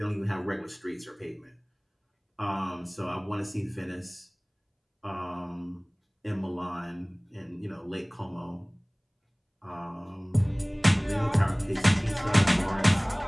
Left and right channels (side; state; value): both; identical; correlation 1.00